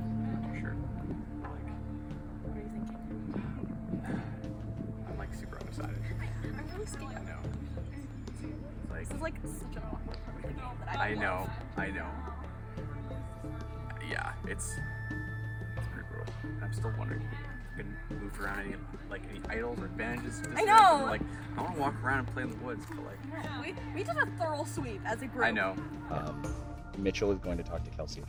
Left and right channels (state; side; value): identical; both; correlation 1.00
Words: not too sure. Like, What are you thinking? I'm like super undecided. I'm really scared. I know. Like, This is like such an awkward part of the game that I know. Yeah, it's pretty brutal. I'm still wondering if we can move around any idols or advantages. I know. Like, I want to walk around and play in the woods, but like. We did a thorough sweep as a group. I know. Mitchell is going to talk to Kelsey